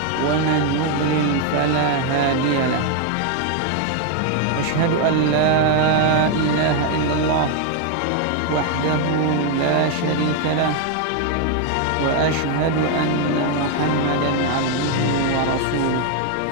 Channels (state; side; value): different; both; correlation 0.01